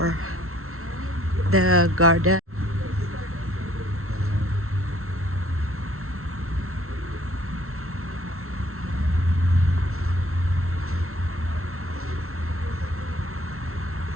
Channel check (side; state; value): left; late; 0.63 ms